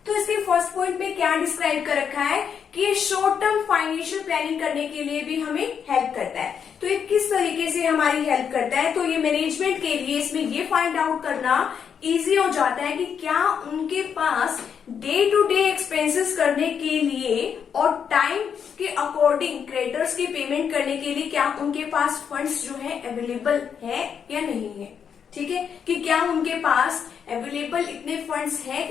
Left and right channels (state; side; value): quieter; right; 7.4 dB